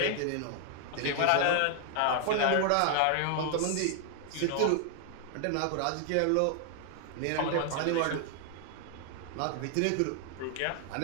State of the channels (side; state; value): both; different; correlation 0.00